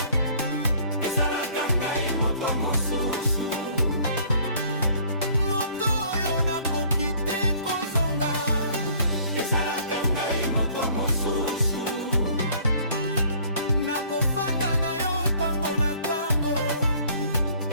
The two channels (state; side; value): inverted; both; correlation -0.56